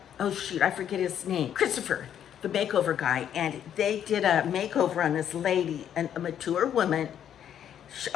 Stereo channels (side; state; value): right; quieter; 9.6 dB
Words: Oh shoot, I forget his name. Christopher, the makeover guy. And they did a makeover on this lady, a mature woman.